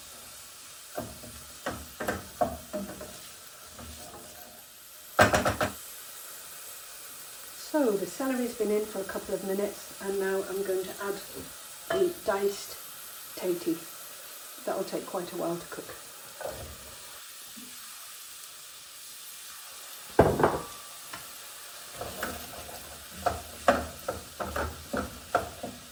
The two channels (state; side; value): identical; both; correlation 1.00